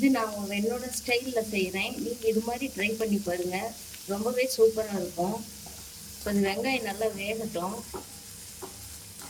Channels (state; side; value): identical; both; correlation 1.00